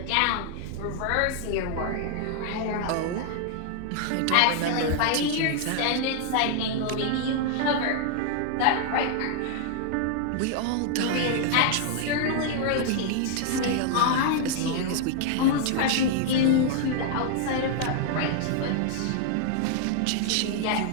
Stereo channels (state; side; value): different; both; correlation 0.00